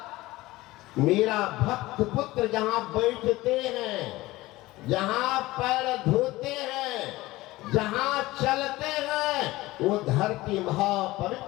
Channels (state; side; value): quieter; right; 18.8 dB